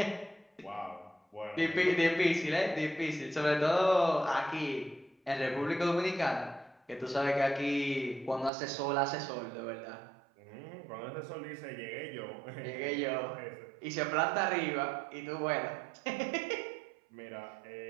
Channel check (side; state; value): left; drops out; at 8.5 s